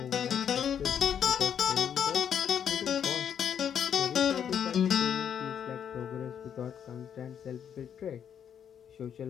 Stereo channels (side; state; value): right; quieter; 8.5 dB